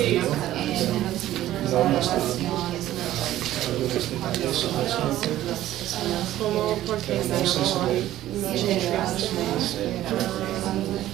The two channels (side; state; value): left; quieter; 13.8 dB